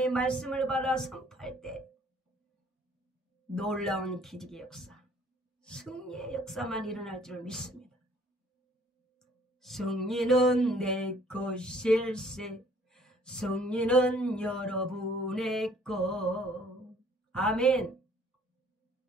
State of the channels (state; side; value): normal; both; correlation 0.58